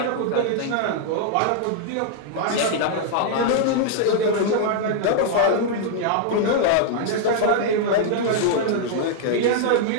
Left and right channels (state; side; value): different; both; correlation -0.01